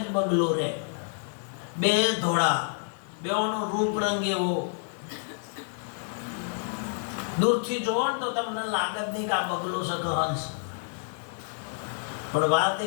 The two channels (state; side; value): silent; right; digital silence